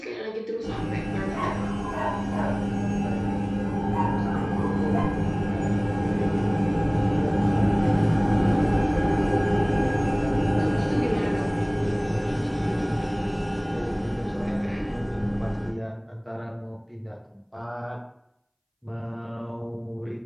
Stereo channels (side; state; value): both; identical; correlation 1.00